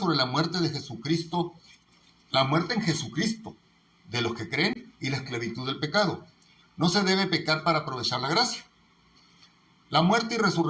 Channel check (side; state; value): both; identical; correlation 1.00